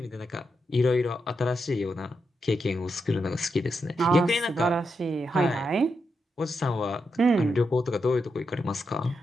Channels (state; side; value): normal; both; correlation 0.84